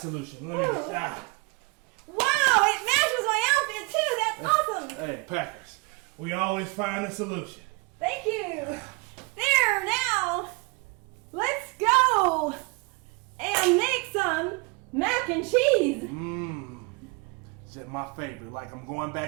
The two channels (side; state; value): left; quieter; 28.2 dB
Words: Let me just. Wow, it matches my outfit too. That's awesome. Hey, Packers, we always find a solution. Thank you. There, now, let's go and make some mac and cheese. It's my favorite. Like I'm going